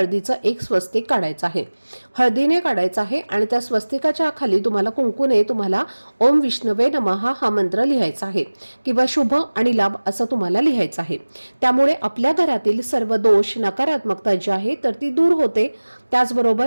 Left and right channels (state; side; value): inverted; both; correlation -1.00